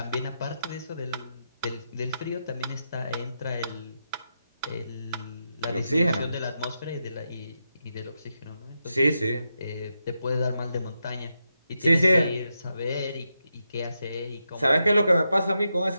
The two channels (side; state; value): both; inverted; correlation -0.86